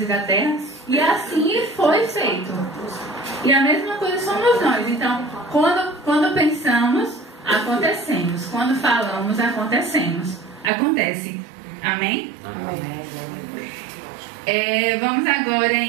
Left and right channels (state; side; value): drops out; left; at 10.7 s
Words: e da terra, e assim foi feito. E a mesma coisa somos nós. Então, quando pensamos, acontecemos. Quando falamos, acontece. Amém? Amém. Vamos agora